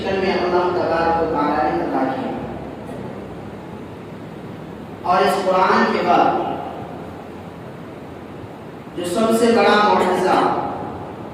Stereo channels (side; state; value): both; identical; correlation 1.00